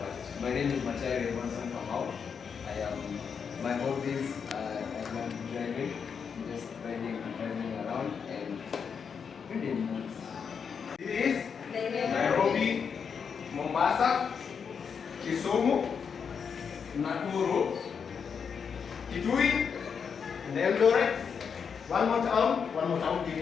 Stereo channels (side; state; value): right; quieter; 6.5 dB